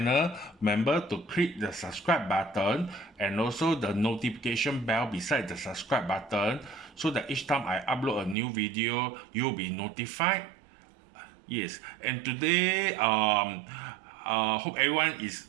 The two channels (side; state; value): left; drops out; at 8.3 s